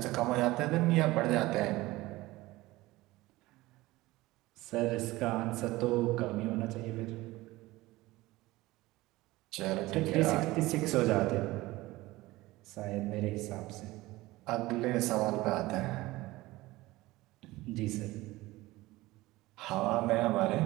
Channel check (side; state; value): left; quieter; 19.1 dB